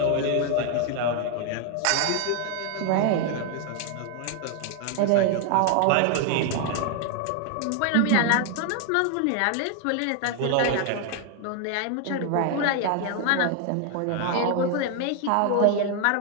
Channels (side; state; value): both; different; correlation 0.00